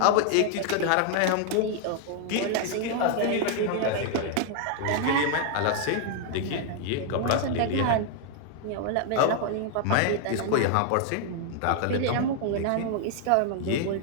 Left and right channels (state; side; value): different; both; correlation 0.00